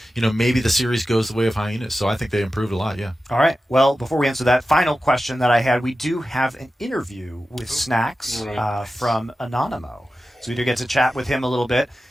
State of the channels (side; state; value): both; normal; correlation 0.93